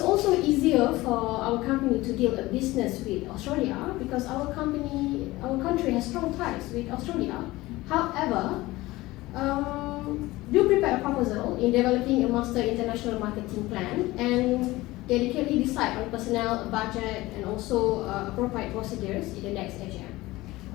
also easier for our company to deal a business with Australia because our country has strong ties with Australia. However, do prepare a proposal in developing a master international marketing plan and dedicatedly decide on personnel, budget, and also appropriate procedures in the next AGM.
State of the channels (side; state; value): right; quieter; 19.1 dB